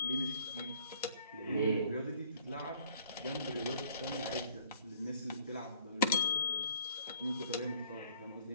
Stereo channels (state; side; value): inverted; both; correlation -0.57